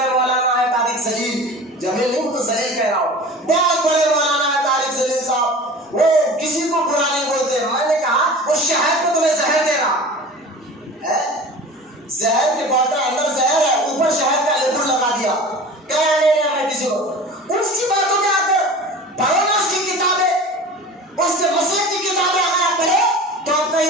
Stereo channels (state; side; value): normal; both; correlation 0.38